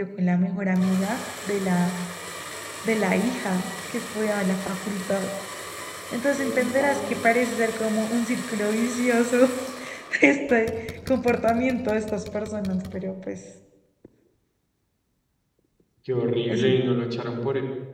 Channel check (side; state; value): both; identical; correlation 1.00